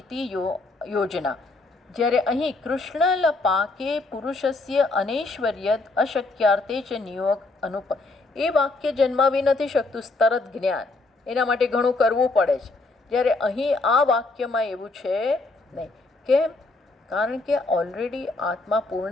ઇતિ યોજના. જ્યારે અહીં કૃષ્ણલ પાકે પુરુષસ્ય અનૈશ્વર્યદ અશક્યાર્થે ચ નિયોગ અનુપ. એ વાક્ય જન્માવી નથી શકતું તરત જ્ઞાન. એના માટે ઘણું કરવું પડે છે. જ્યારે અહીં આ વાક્યમાં એવું છે નહીં. કેમ? કારણ કે ઓલરેડી આત્મા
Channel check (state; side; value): quieter; right; 3.3 dB